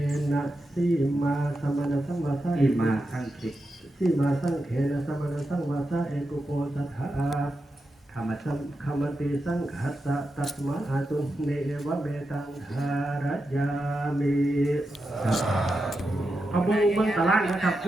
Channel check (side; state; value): both; normal; correlation 0.88